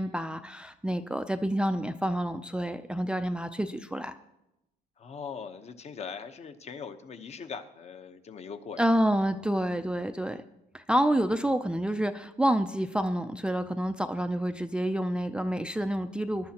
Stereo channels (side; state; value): both; normal; correlation 0.92